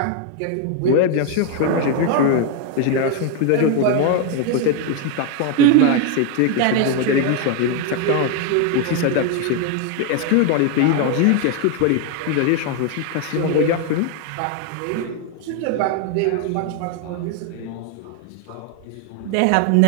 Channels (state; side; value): different; both; correlation 0.01